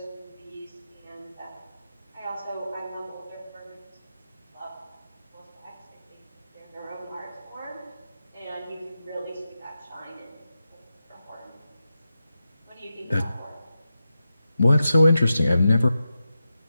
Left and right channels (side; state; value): both; inverted; correlation -0.91